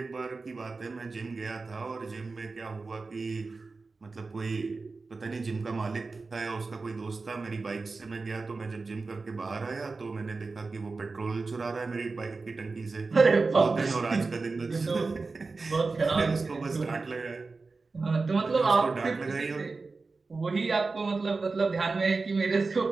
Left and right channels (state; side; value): quieter; left; 4.0 dB